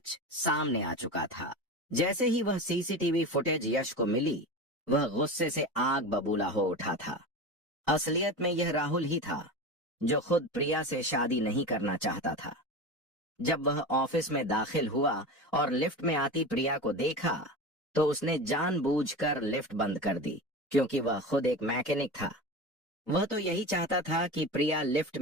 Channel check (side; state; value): both; normal; correlation 0.27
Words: सामने आ चुका था। जैसे ही वह सीसीटीवी फुटेज यश को मिली, वह गुस्से से आग बबूला हो उठा था। असलियत में यह राहुल ही था, जो खुद प्रिया से शादी नहीं करना चाहता था। जब वह ऑफिस में दाखिल हुआ और लिफ्ट में आती प्रिया को देखा, तो उसने जानबूझकर लिफ्ट बंद कर दी, क्योंकि वह खुद एक मैकेनिक था। वह तो यही चाहता था कि प्रिया लिफ्ट